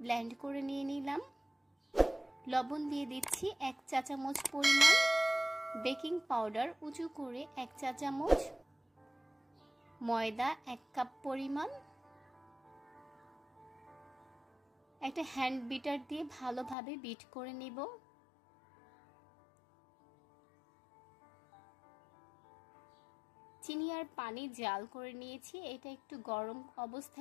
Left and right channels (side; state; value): right; drops out; at 16.8 s